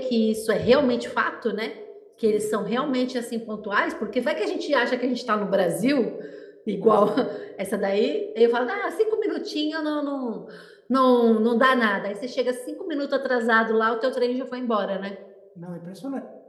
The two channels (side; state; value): both; identical; correlation 1.00